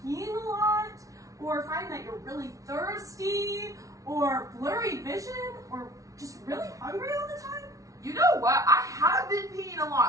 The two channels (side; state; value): left; late; 0.17 ms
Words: peeing a lot? Or find that you're really thirsty? Or blurry vision? Or just really hungry all the time? You know what? I have been peeing a